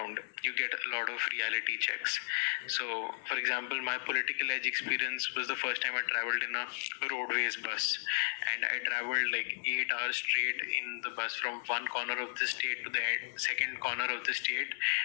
you get a lot of reality checks. So for example, my political edge experience was the first time I traveled in a roadways bus, and I traveled like 8 hours straight in the bus from one corner of the state to the second corner of the state.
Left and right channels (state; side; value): silent; right; 55 dB below the other